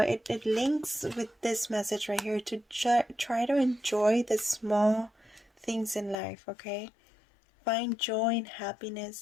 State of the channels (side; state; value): right; drops out; at 6.2 s